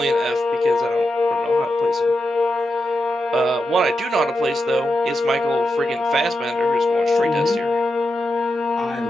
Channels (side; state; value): both; normal; correlation 0.88